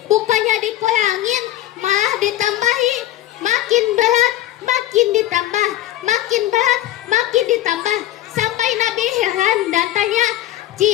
bukannya dikurangin, malah ditambahi. Makin berat, makin ditambah, makin berat, makin ditambah. Sampai Nabi heran dan tanya,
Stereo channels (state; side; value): quieter; right; 14.1 dB